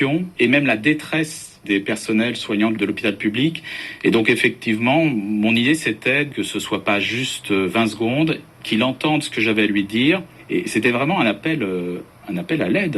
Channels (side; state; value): both; identical; correlation 1.00